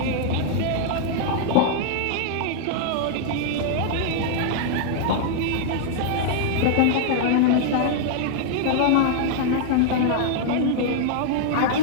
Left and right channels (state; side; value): different; both; correlation -0.01